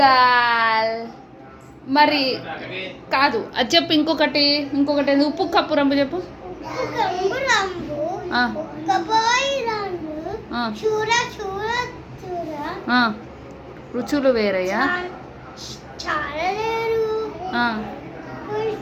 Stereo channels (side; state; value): both; identical; correlation 1.00